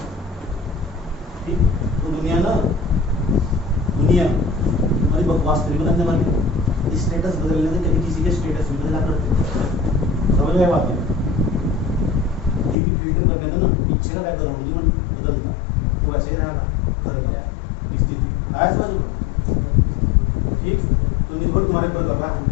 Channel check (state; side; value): drops out; right; at 12.8 s